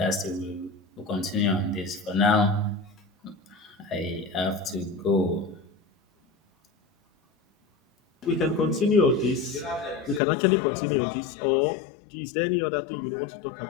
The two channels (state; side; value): drops out; right; at 10.2 s